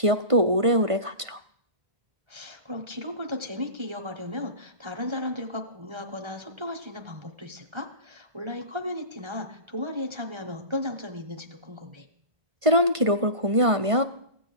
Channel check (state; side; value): late; left; 1.5 ms